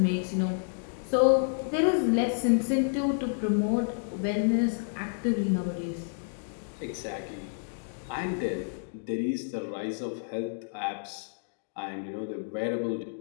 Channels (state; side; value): silent; right; digital silence